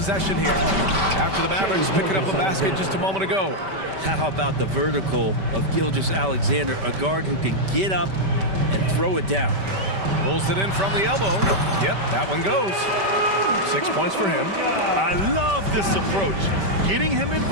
here. After the Mavericks picking up a basket just a moment ago. How about the vertical of Gilgeous-Alexander, a guard who can get up and throw it down. Pulls it in from the elbow. Yep, that one goes. 6 points for him. I love this approach. Getting him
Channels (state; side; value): late; left; 5.2 ms